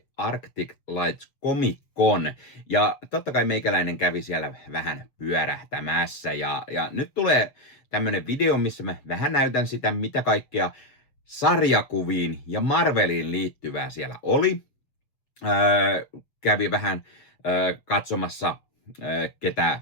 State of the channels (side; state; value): right; late; 7.2 ms